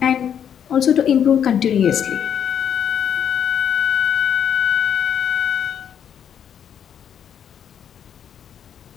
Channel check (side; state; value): right; quieter; 8.7 dB